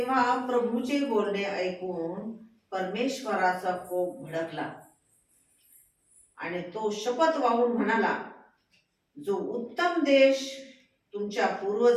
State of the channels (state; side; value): identical; both; correlation 1.00